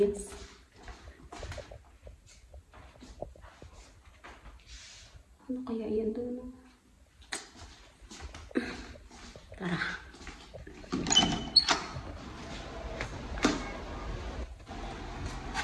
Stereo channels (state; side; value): identical; both; correlation 1.00